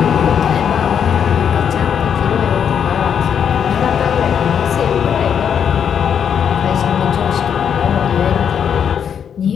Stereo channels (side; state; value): right; quieter; 7.9 dB